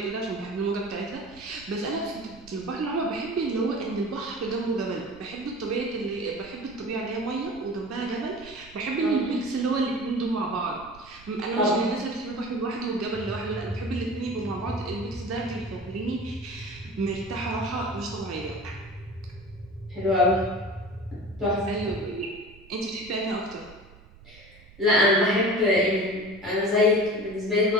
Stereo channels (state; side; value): noise; right; rumble, 22 dB below the sound